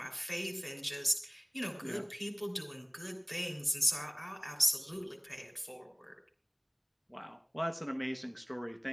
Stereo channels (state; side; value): identical; both; correlation 1.00